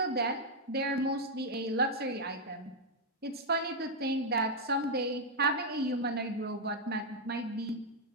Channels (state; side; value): normal; both; correlation -0.01